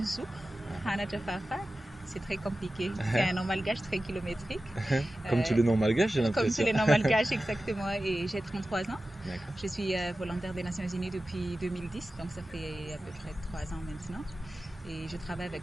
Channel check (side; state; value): both; normal; correlation 0.95